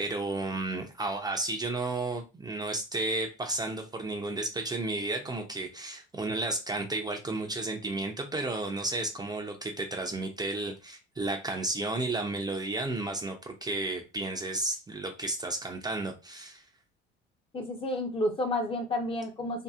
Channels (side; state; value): both; normal; correlation 0.34